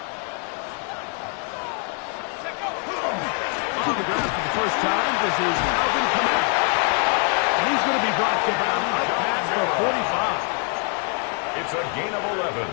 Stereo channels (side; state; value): right; quieter; 39.8 dB